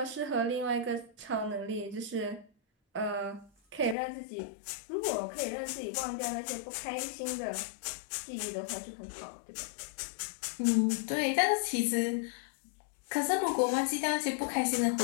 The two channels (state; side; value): drops out; right; at 4.0 s